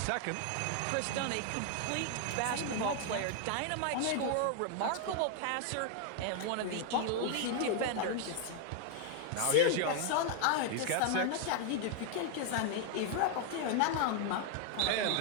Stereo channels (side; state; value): both; different; correlation 0.00